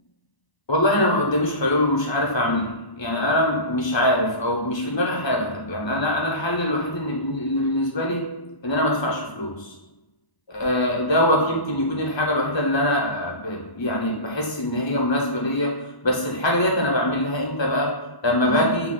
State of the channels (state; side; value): late; right; 1.2 ms